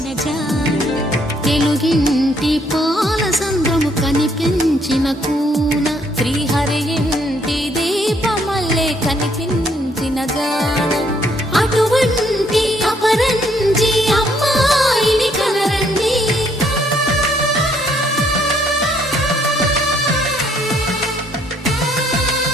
జాన తెలుగింటి పాల సంద్రము కనిపించిన కూన శ్రీహరి ఇంటి దీపమల్లే కనిపించిన జాన అటువంటి అపరంజి అమ్మాయిని కనరండి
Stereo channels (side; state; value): both; normal; correlation 0.68